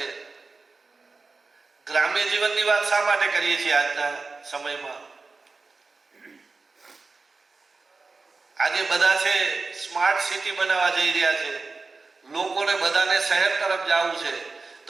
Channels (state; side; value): quieter; left; 3.9 dB